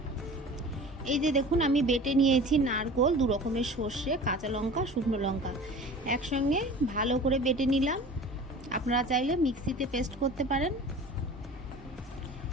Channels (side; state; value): both; normal; correlation 0.40